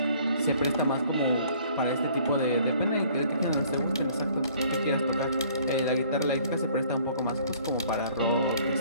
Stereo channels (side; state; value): both; inverted; correlation -0.57